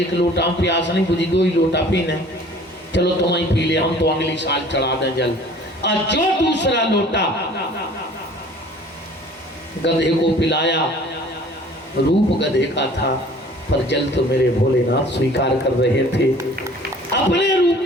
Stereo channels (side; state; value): both; normal; correlation 0.50